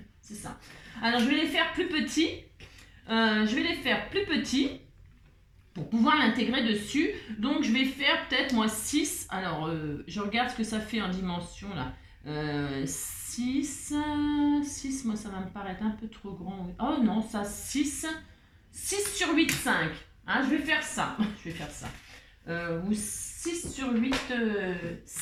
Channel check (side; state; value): both; identical; correlation 1.00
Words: C'est ça. Alors, je vais les faire plus petits. Pour pouvoir l'intégrer dessus. Donc, je vais faire peut-être, moi, 6. Alors, je regarde ce que ça fait en dimension, là. 6, moi, ça va me paraître un peu trop grand. Oh non, ça, 6 sur 8, 5. Hein, je vais faire ça. Ou 6 sur 8,